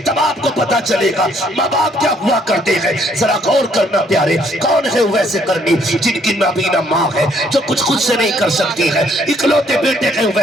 तब आपको पता चलेगा माँ बाप क्या हुआ करते हैं। जरा गौर करना प्यारे, कौन है उवैस करनी? जिनकी नाबीना माँ है, जो कुछ खुद से नहीं कर सकती है, इकलौते बेटे हैं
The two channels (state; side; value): normal; both; correlation 0.66